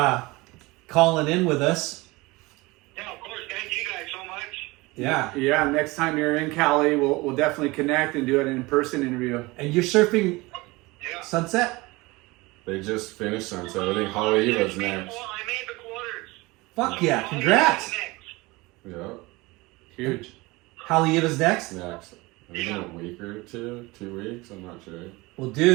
calling in with us. Yeah, of course. Thank you guys so much. Yeah. Yeah. Next time you're in Cali, we'll definitely connect and do an in-person interview. And you're surfing Yeah. Sunset? They just finished Sunset. I think Holly Eva's next. I made the quarters. Fuck yeah. Congrats. Yeah, Huge. Halieva's next? next. I think in a week or 2 weeks. I'm not sure. Well,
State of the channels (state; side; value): quieter; left; 22.6 dB